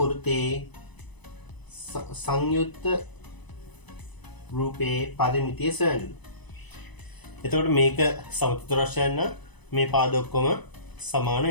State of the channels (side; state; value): right; late; 1.0 ms